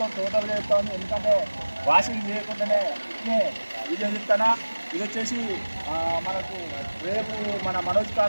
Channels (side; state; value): both; inverted; correlation -1.00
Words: టోటల్గా చెప్తాను, ఎందుకంటే వాషింగ్ చేయకుండానే ఇట్నే వీడియో చెప్తానా. ఇది వచ్చేసి మనకు రేపు మన మనోజ్